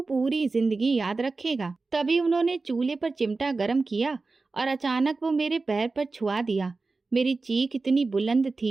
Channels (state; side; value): quieter; left; 3.8 dB